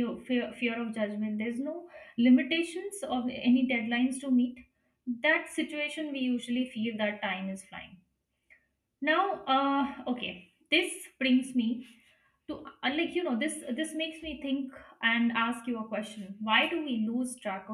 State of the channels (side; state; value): both; identical; correlation 1.00